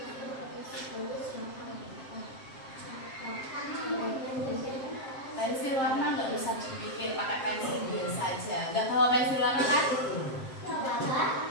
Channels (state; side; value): late; right; 7.6 ms